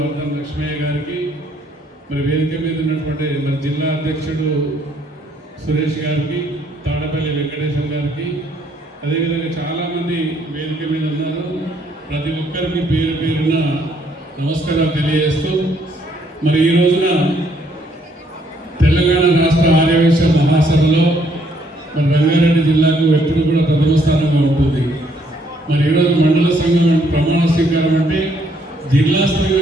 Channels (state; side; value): normal; both; correlation 0.68